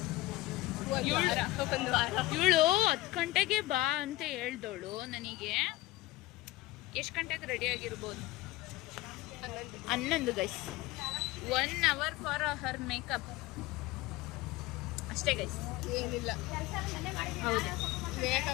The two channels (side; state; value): right; quieter; 18.6 dB